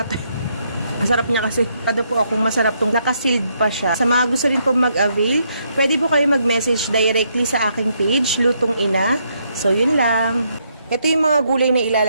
ito. Masarap niya kasi. Kada po akong masarap tong nakasealed pa siya. Sa mga gusto rin po mag-avail, pwede po kayo mag-message directly sa aking page, Lutong Ina. So, yun lang. Ito yung mga gulay na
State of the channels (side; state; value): both; inverted; correlation -0.75